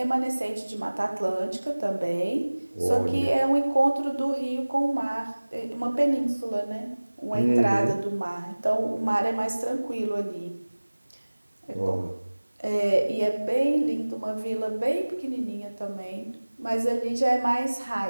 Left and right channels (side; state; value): both; inverted; correlation -1.00